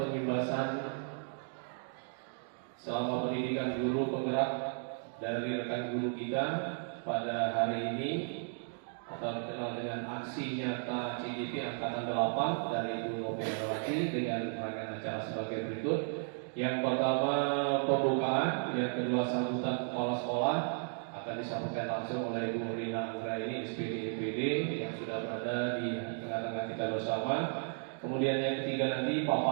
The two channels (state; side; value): silent; left; 55 dB below the other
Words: selama pendidikan guru penggerak dari rekan guru kita pada hari ini atau dikenal dengan aksi nyata CGP Angkatan 8 dari Ibu Rope Awati dengan rangkaian acara sebagai berikut. Yang pertama pembukaan, yang kedua sambutan kepala sekolah akan disampaikan langsung oleh Ibu Rina Anggraini SPD EPD yang sudah berada di tengah-tengah kita bersama. Kemudian yang ketiga nanti